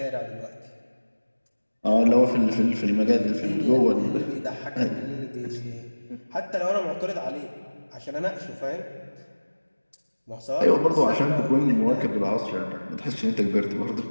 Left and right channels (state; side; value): inverted; both; correlation -1.00